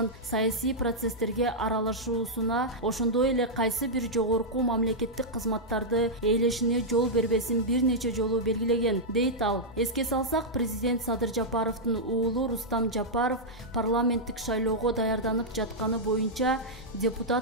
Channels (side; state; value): both; normal; correlation -0.07